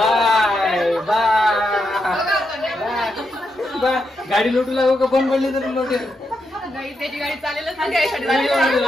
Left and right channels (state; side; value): normal; both; correlation 0.83